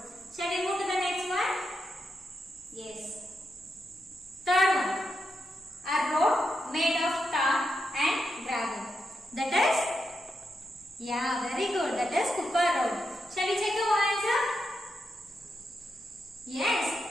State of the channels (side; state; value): both; normal; correlation 0.85